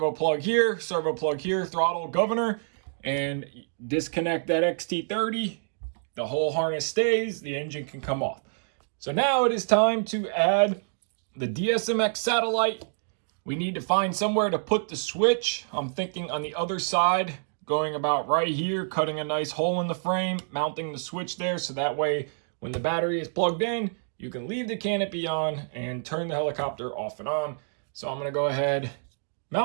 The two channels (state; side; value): silent; left; digital silence